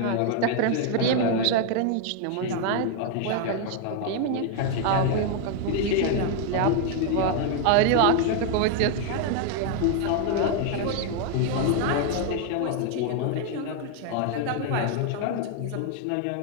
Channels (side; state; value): both; different; correlation 0.00